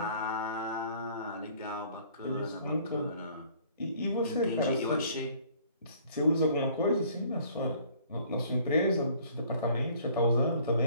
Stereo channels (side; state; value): both; inverted; correlation -0.57